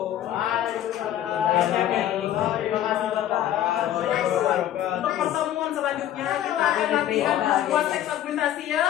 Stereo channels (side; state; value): right; quieter; 11.9 dB